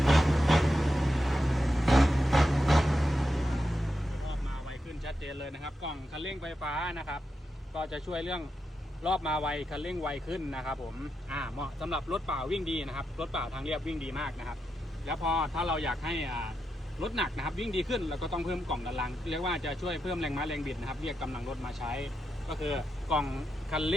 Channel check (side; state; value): both; normal; correlation 0.86